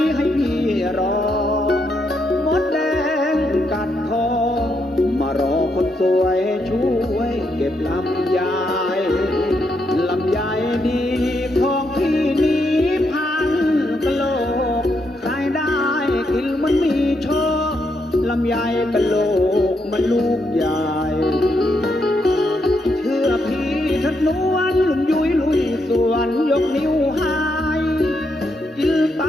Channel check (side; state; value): both; normal; correlation 0.79